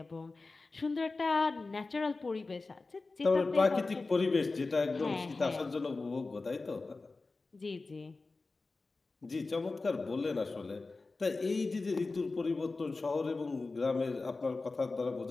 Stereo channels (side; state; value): right; quieter; 3.7 dB